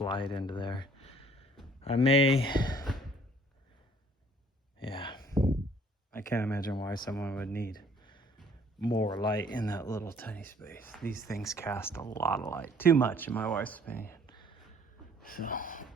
into there. I can't imagine why someone would need more light in that little tiny space. These things cast a lot of light. Too much, in my wife's opinion. So,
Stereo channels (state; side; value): normal; both; correlation 0.58